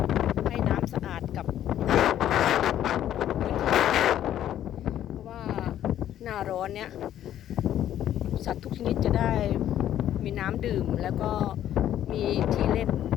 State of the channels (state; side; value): quieter; right; 11.4 dB